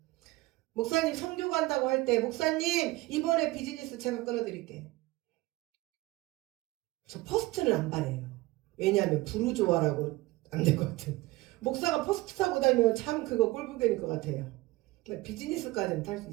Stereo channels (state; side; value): quieter; left; 20.3 dB